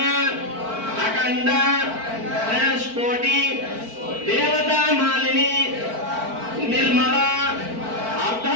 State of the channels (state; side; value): late; left; 4.5 ms